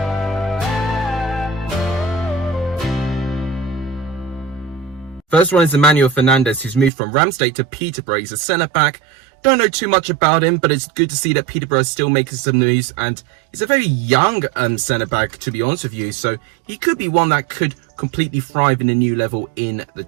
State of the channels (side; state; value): left; drops out; at 6.9 s